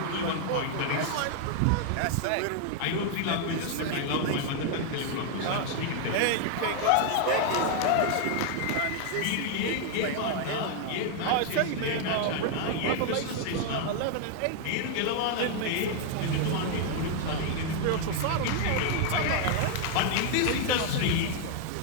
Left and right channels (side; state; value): both; different; correlation 0.00